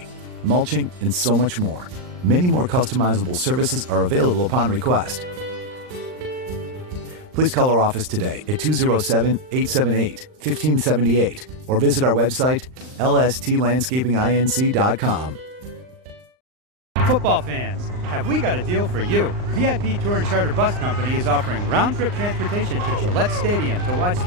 mulching, and so much more. Many more customizable services are available upon request. Please call our office today at 207-878-1578 or visit our website, lstlandscapinginc.com. Football fans, have we got a deal for you? VIP Tour and Charter Bus Company is offering round-trip transportation to Gillette Stadium to watch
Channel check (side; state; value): left; late; 39 ms